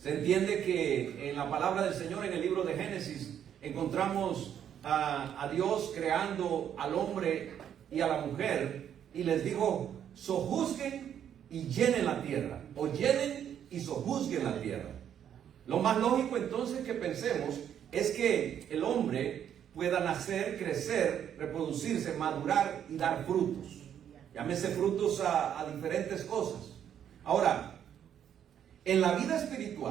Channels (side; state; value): left; quieter; 9.4 dB